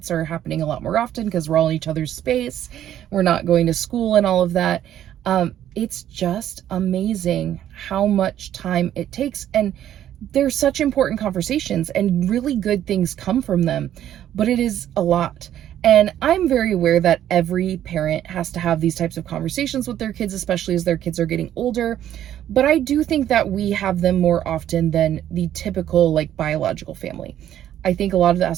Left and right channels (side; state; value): left; quieter; 11.3 dB